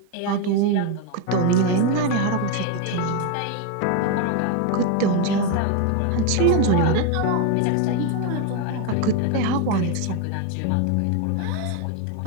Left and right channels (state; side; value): different; both; correlation 0.02